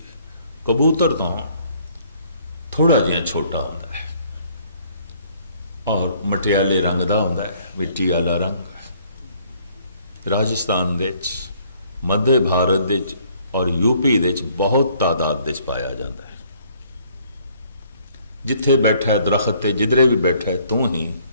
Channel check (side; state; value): both; inverted; correlation -0.62